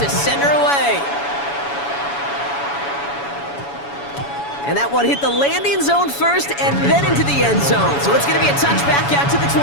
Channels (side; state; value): right; late; 7.1 ms